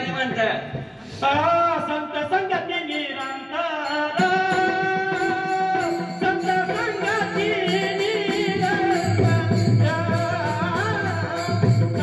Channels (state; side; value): identical; both; correlation 1.00